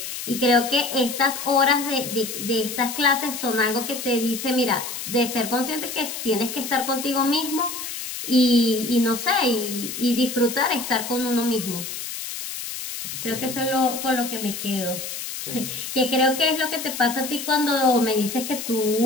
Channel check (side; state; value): left; noise; hiss, 7 dB below the sound